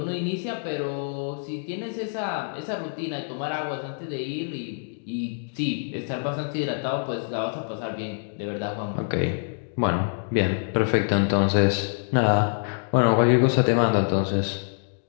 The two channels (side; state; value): right; silent; digital silence